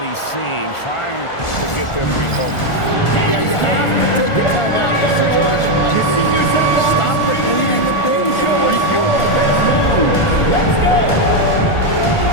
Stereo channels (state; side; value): late; right; 1.4 ms